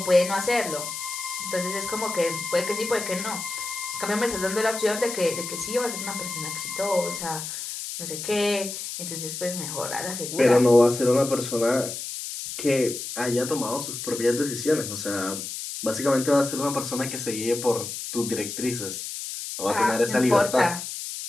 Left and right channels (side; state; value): left; noise; hiss, 7 dB below the sound